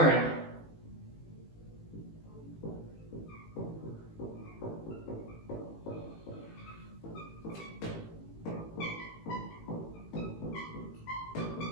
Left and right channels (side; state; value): right; late; 18 ms